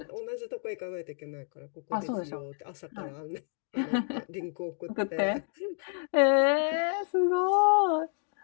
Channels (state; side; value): silent; right; 58 dB below the other